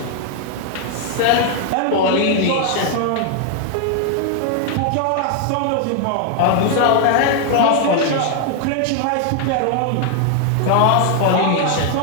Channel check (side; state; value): both; different; correlation 0.00